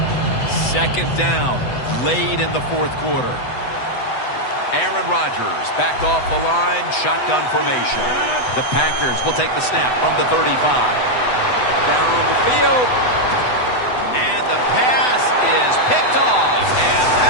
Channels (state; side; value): late; right; 8.0 ms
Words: Second down, late in the 4th quarter. Aaron Rodgers back off the line, shotgun formation. The Packers will take the snap from the 35. Down on the field. And the pass is picked off, and